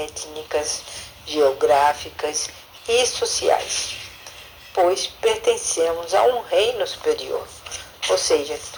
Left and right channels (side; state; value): both; identical; correlation 1.00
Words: geográficas e sociais, pois pertencemos a um reino superior. Ou seja,